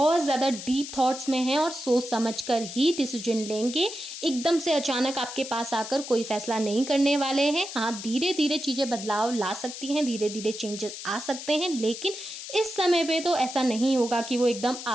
ज़्यादा डीप थॉट्स में हैं, और सोच समझ कर ही डिसीजन लेंगे। एकदम से अचानक आपके पास आकर कोई फैसला नहीं करने वाले हैं। हाँ, धीरे-धीरे चीज़ें बदलाव ला सकती हैं, धीरे-धीरे चेंजेस आ सकते हैं, लेकिन इस समय पे तो ऐसा नहीं होगा कि वो एकदम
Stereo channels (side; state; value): left; noise; hiss, 10 dB below the sound